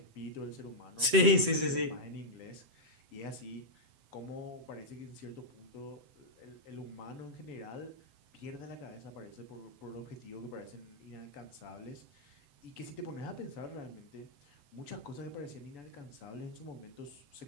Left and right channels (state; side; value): late; left; 7.8 ms